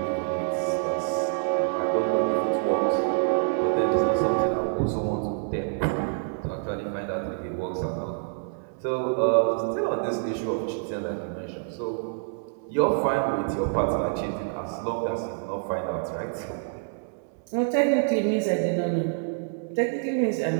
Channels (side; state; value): left; silent; 60 dB below the other